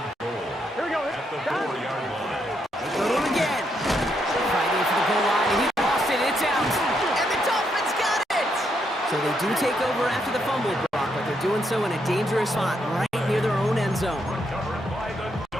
goal. Here we go. At the 4-yard line. They go to him again. Fighting for the goal line, and he lost it. It's out. And the Dolphins got it! So they do take over after the fumble, Brock, but they're doing so in a dangerous spot right near their own end zone. Recovered by the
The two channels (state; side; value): normal; both; correlation 0.78